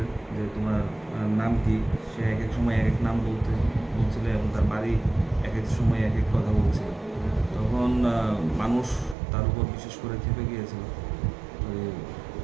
যে তোমার নাম কি। সে এক এক সময় এক এক নাম বলছিল এবং তার বাড়ি এক এক সময় এক এক কথা বলছিল। তখন মানুষ তার উপর বিশেষ করে খেপে গিয়েছিল। তো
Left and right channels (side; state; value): left; drops out; at 9.2 s